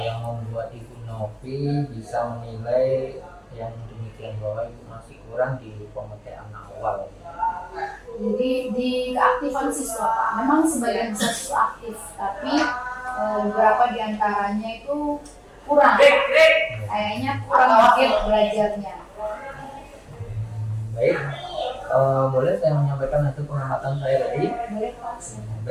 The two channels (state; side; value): identical; both; correlation 1.00